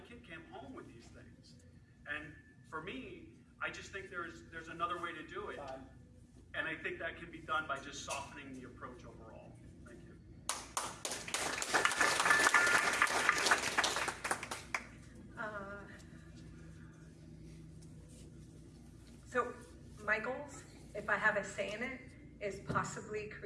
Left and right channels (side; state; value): both; identical; correlation 1.00